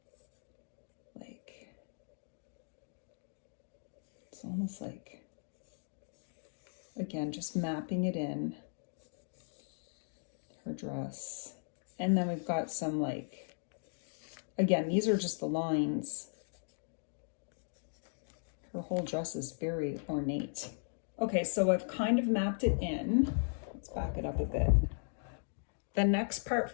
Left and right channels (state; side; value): silent; right; digital silence